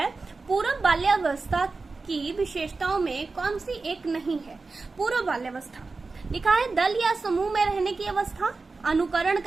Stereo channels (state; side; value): quieter; left; 3.9 dB